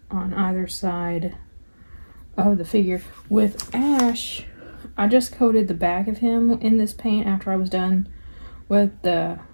on either side of the figure. With Ash, I just coated the back of him in this paint after I was done with the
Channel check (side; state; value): both; inverted; correlation -1.00